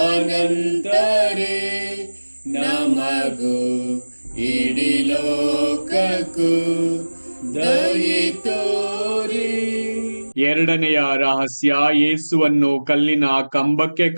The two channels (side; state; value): both; inverted; correlation -1.00